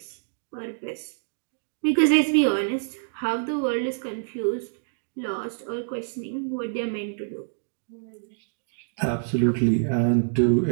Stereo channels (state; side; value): silent; left; digital silence